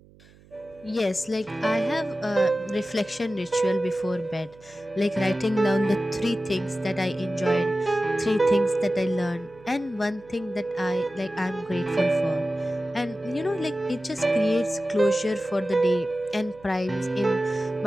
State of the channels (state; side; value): noise; right; hum, 26 dB below the sound